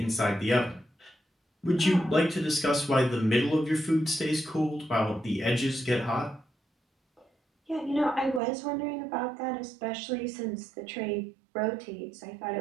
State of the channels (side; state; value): left; drops out; at 8.4 s